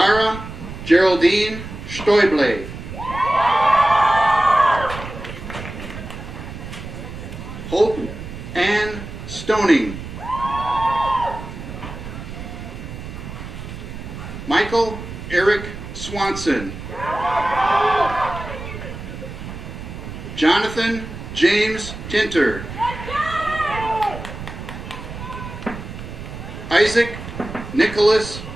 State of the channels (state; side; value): noise; right; rumble, 10 dB below the sound